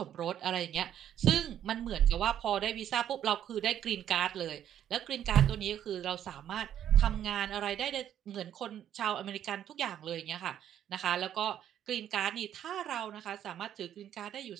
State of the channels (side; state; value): left; quieter; 10.4 dB